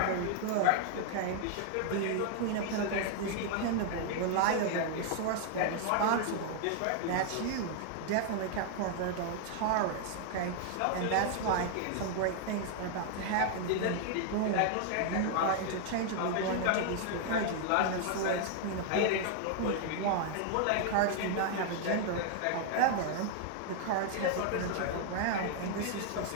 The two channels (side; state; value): both; different; correlation 0.00